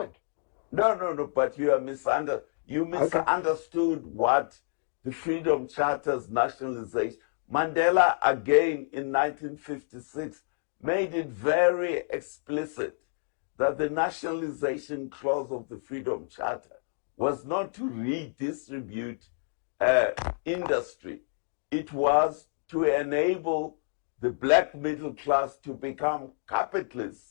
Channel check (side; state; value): right; silent; digital silence